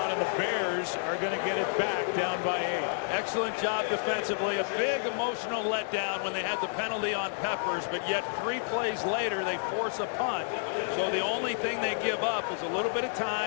and the Bears are going to get it back down by 8. Excellent job defensively. A big emotional letdown when they had the penalty on Peppers, but yet 3 plays later they force a punt. So the only thing they give up is a little bit of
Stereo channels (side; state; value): right; silent; digital silence